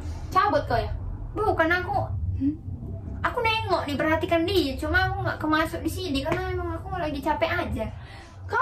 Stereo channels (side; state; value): both; identical; correlation 1.00